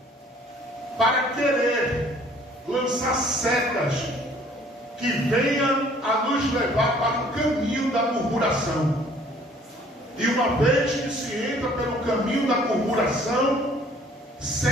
para querer lançar setas que venham a nos levar para o caminho da murmuração. E uma vez que se entra pelo caminho da murmuração,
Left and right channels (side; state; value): both; normal; correlation 0.56